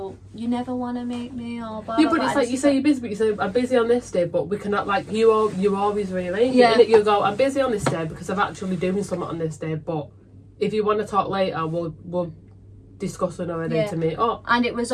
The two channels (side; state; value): both; identical; correlation 1.00